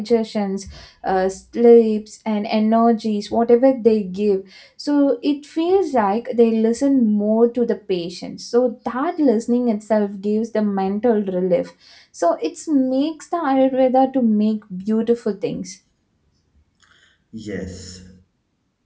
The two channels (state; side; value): identical; both; correlation 1.00